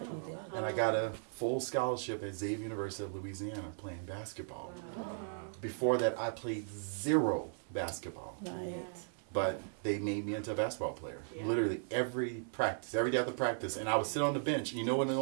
I got a full scholarship at Xavier University of Louisiana playing basketball. Before that, I played 0 basketball. But they made me into a basketball player. Literally every practice, every day after practice. And I would sit on the bench. You know what the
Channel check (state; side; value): silent; left; 53 dB below the other